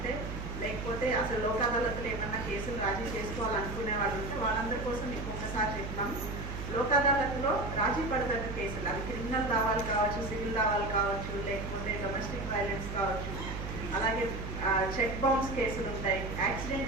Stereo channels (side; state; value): right; noise; hum, 6 dB below the sound